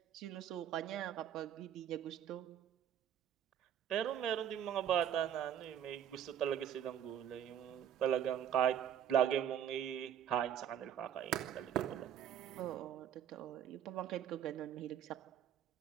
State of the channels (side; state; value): left; quieter; 9.7 dB